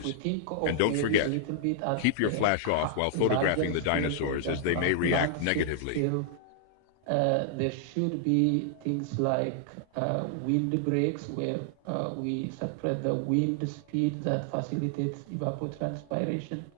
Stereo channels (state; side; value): different; both; correlation -0.01